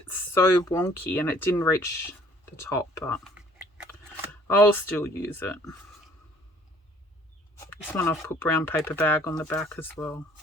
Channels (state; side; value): normal; both; correlation 0.56